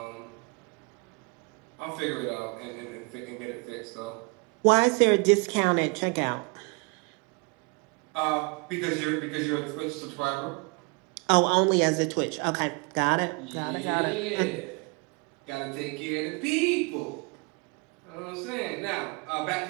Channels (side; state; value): left; quieter; 29.9 dB